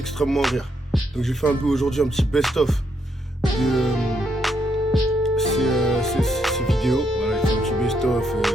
rire. Donc j'ai fait un peu aujourd'hui un petit best-of de ces vidéos. Voilà, j'ai fait un petit best-of,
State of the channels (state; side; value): normal; both; correlation 0.76